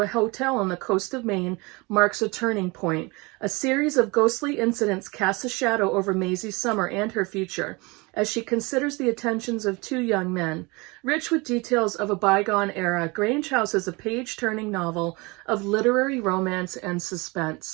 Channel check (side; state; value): left; quieter; 26.1 dB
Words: a hotel on the coast of Maine marks a turning point. A series of ghostly incidents casts a shadow over Maisie's summer and her future, as she considers the attentions of two young men. Rich with details of a bygone era, Grange House is a page-turning novel of literary romance and